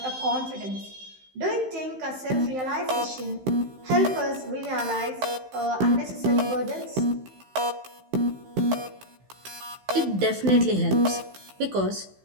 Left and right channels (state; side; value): late; left; 16 ms